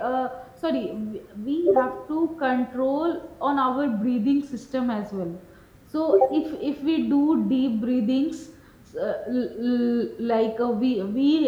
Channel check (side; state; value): both; identical; correlation 1.00